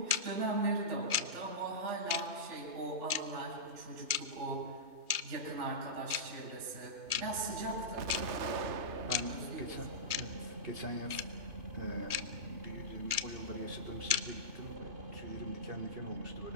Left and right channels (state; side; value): late; left; 2.4 ms